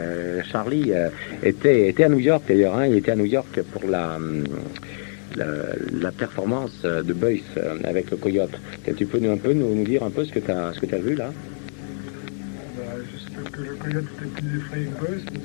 Charlie, était à New York d'ailleurs, il était à New York pour la performance de Boyce avec le coyote. Tu peux nous dire un peu ce que tu as vu là? Juste que le coyote était plus effrayé que Boyce,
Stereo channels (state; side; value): silent; right; digital silence